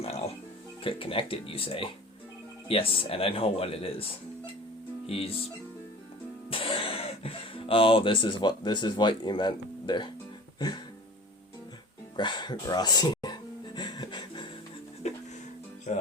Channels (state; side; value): normal; both; correlation 0.40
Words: Connected, you say? Yes, and I know what it is. He's... Oh, this is what you meant there. Grossi.